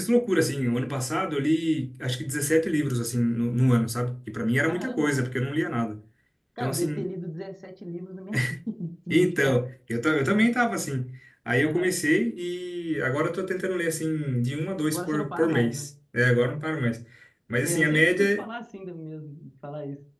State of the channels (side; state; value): both; identical; correlation 1.00